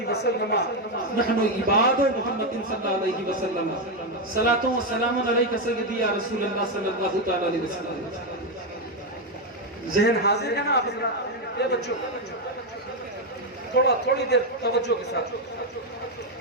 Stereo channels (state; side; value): normal; both; correlation 0.06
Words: وسلم نحن عباد محمد صلی اللہ علیہ وسلم صلاۃ و سلام علیک سیدی یا رسول اللہ صلی اللہ تعالی علیہ وسلم۔ ذہن حاضر ہے نا آپ حضرات؟ اے بچوں تھوڑی دیر توجہ کے ساتھ،